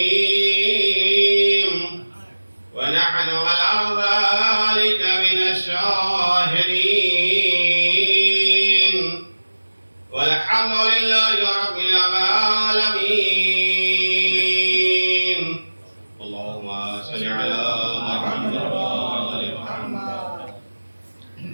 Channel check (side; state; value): both; inverted; correlation -1.00